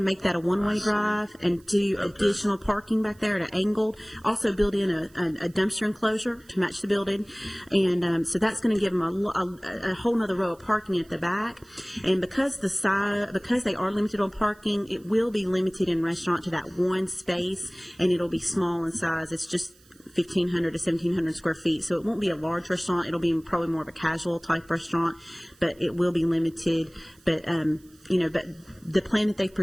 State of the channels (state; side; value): noise; right; hiss, 29 dB below the sound